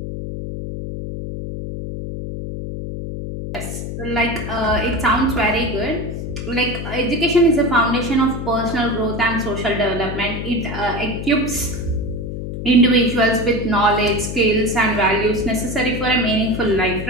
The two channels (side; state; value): left; noise; hum, 6 dB below the sound